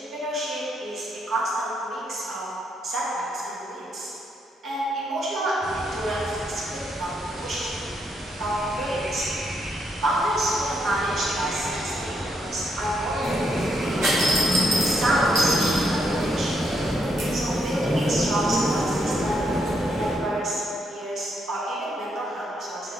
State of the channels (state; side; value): normal; both; correlation 0.76